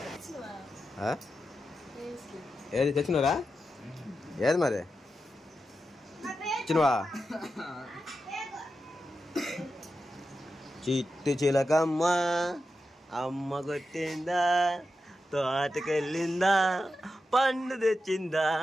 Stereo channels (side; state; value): both; normal; correlation 0.89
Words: ఏది తెచ్చినరా? ఏది మరి ఇచ్చినవా? చిట్టి చిలకమ్మ అమ్మ కొట్టిందా, తోటకెళ్ళిందా, పండు తెచ్చిందా,